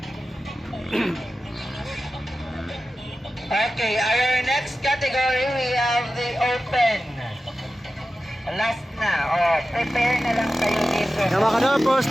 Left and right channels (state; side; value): normal; both; correlation 0.94